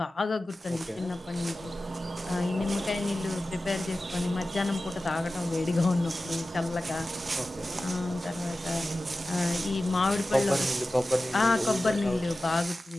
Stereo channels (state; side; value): normal; both; correlation 0.95